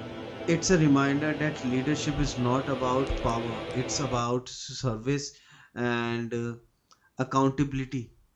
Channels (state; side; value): identical; both; correlation 1.00